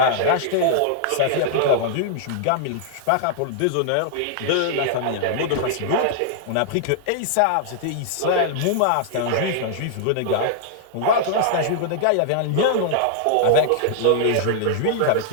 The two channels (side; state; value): both; different; correlation -0.01